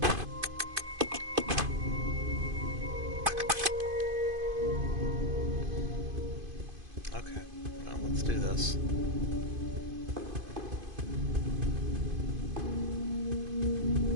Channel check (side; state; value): left; late; 2.5 ms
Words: Okay, well, let's do this.